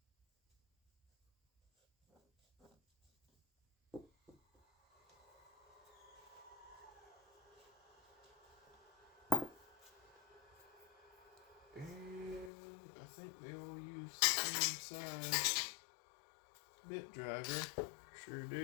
And I think they all use the same size bit driver. Sure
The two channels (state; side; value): drops out; right; at 12.5 s